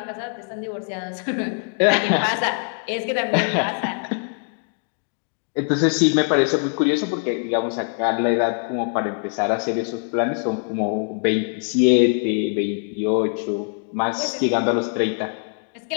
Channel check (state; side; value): silent; right; 58 dB below the other